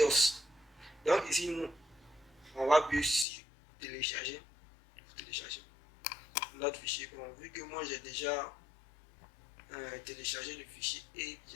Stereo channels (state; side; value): drops out; right; at 3.2 s